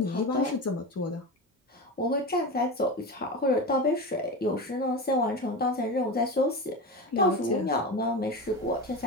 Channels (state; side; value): normal; both; correlation 0.24